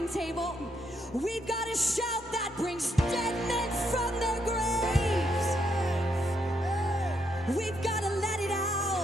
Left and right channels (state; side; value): normal; both; correlation 0.77